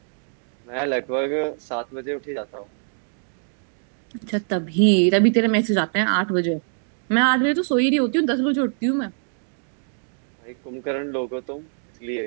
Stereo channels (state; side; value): silent; left; digital silence